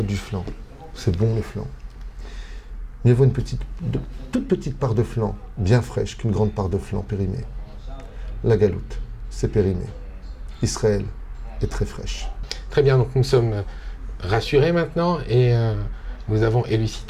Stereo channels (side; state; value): both; identical; correlation 1.00